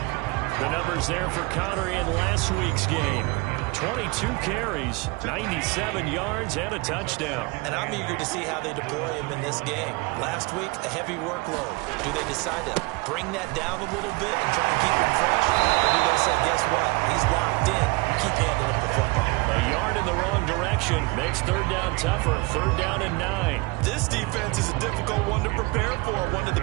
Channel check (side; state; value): left; quieter; 26.0 dB